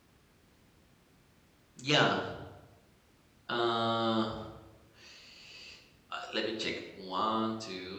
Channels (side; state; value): both; identical; correlation 1.00